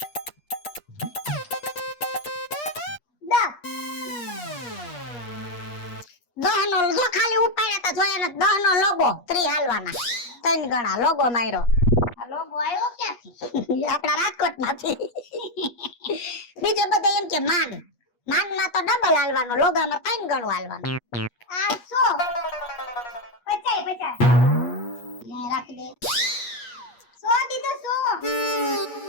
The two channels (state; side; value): late; right; 8.4 ms